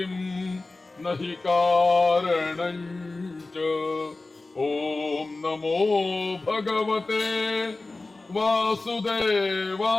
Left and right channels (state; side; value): quieter; right; 3.3 dB